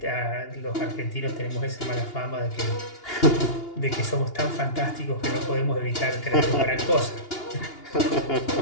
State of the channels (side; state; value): right; late; 2.8 ms